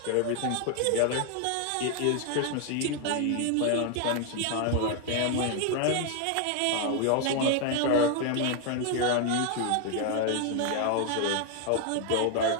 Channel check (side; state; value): both; different; correlation 0.01